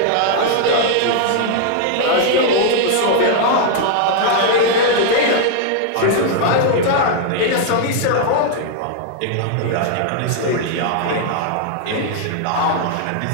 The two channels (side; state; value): both; different; correlation 0.00